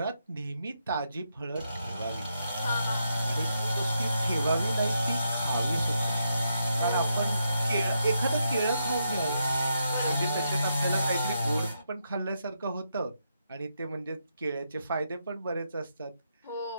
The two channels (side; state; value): both; inverted; correlation -0.81